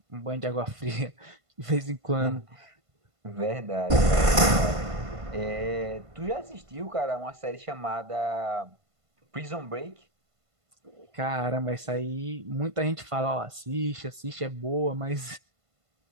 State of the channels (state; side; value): late; left; 1.5 ms